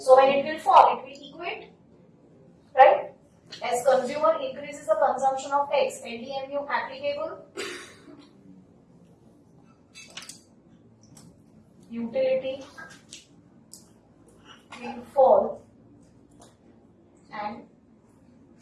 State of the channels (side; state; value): both; identical; correlation 1.00